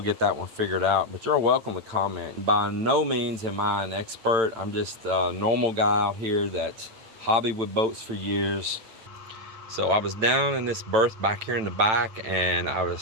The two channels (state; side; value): late; left; 9.0 ms